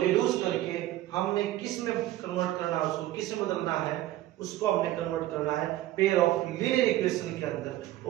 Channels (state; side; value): quieter; left; 14.9 dB